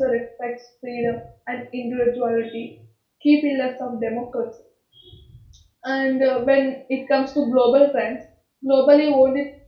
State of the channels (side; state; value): both; identical; correlation 1.00